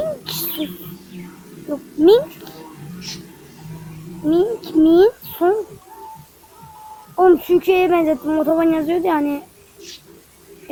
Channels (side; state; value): both; identical; correlation 1.00